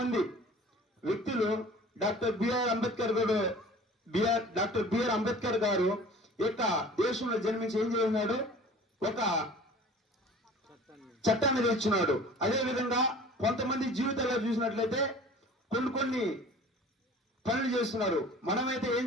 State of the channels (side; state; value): both; normal; correlation 0.45